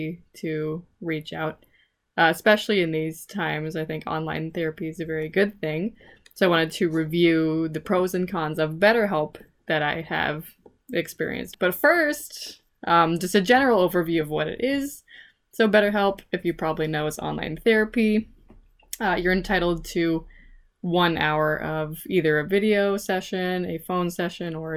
to reach out. Especially in these times, I think online therapy is a very good thing. So I wanted to review the pros and cons of BetterHelp that I have experienced. But first, just a general overview of what it is. So BetterHelp, if you probably know, is online therapy. You're entitled to 1 hour of either a video session, a phone session, or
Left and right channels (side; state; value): both; identical; correlation 1.00